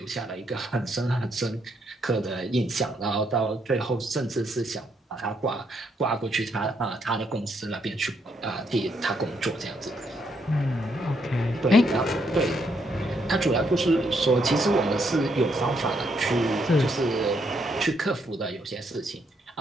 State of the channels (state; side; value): normal; both; correlation 0.75